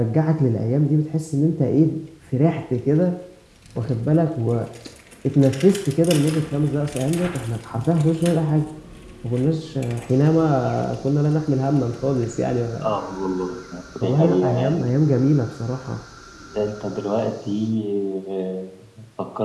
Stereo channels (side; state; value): both; identical; correlation 1.00